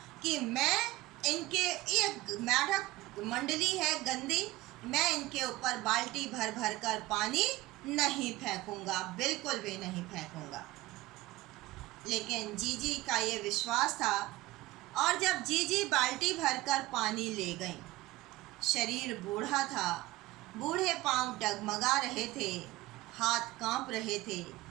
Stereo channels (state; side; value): quieter; left; 18.3 dB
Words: कि मैं इनके, ये मेढक मंडली है गंदी, मैं इनके ऊपर बाल्टी भर भर कर पानी नहीं फेंकूंगा, बिल्कुल भी नहीं फेंकूंगा। लेकिन जीजी का ये विश्वास था, और जब जीजी बाल्टी भरकर पानी ले गई, शरीर बूढ़ा था, बूढ़े पांव डगमगा रहे थे, हाथ कांप रहे थे,